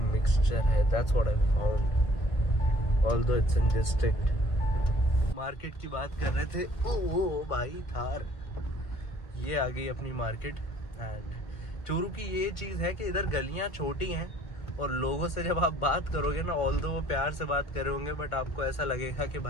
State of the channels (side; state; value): right; late; 1.7 ms